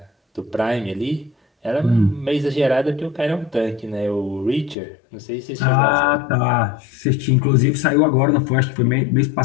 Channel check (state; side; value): drops out; right; at 4.8 s